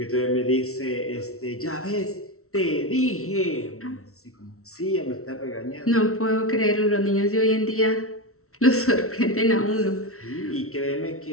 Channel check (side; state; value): right; late; 0.63 ms